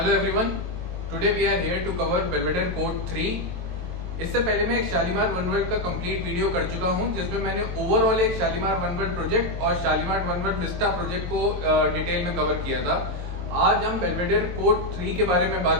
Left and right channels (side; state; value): left; late; 22 ms